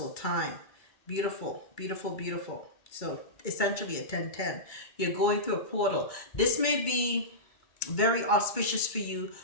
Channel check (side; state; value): right; late; 2.2 ms